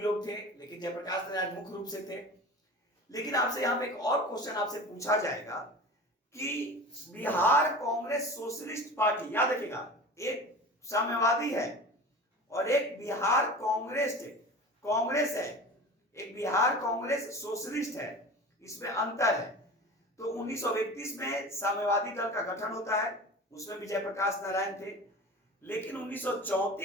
लोग थे, लेकिन जयप्रकाश नारायण मुख्य रूप से थे। लेकिन आपसे यहां पे एक और क्वेश्चन आपसे पूछा जाएगा कि बिहार कांग्रेस सोशलिस्ट पार्टी, याद रखिएगा, एक साम्यवादी है और एक बिहार कांग्रेस है, एक बिहार कांग्रेस सोशलिस्ट है, इसमें अंतर है। तो 1931 में साम्यवादी दल का गठन होता है, उसमें भी जयप्रकाश नारायण थे। लेकिन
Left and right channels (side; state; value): both; normal; correlation 0.35